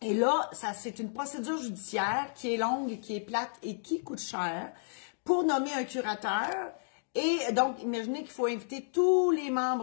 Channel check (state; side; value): silent; right; digital silence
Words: Et là, c'est une procédure judiciaire qui est longue, qui est plate et qui coûte cher pour nommer un curateur. Et donc, imaginez qu'il faut inviter tous les